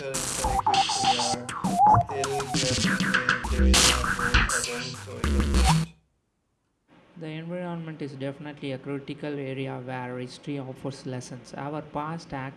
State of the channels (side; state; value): both; identical; correlation 1.00